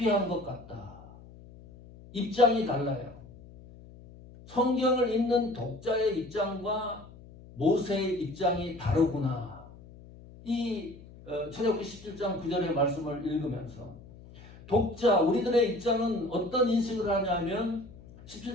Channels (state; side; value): noise; left; hum, 20 dB below the sound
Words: 것 같다. 입장이 달라요. 성경을 읽는 독자의 입장과 모세의 입장이 다르구나. 이 출애굽기 17장 9절의 말씀을 읽으면서 독자, 우리들의 입장은 어떤 인식을 하냐면